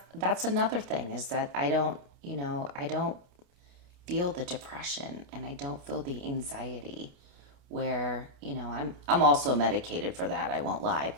that's another thing, is that I don't feel the depression and I don't feel the anxiety where, I'm also medicated for that. I won't lie,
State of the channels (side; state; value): left; late; 28 ms